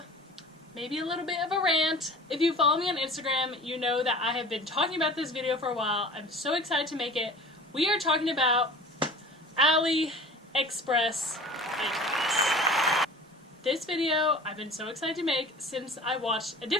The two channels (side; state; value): both; normal; correlation 0.41